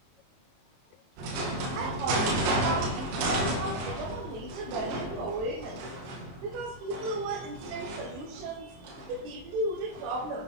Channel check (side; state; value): left; late; 23 ms